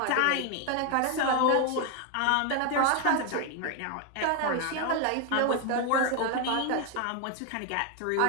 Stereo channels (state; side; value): different; both; correlation 0.01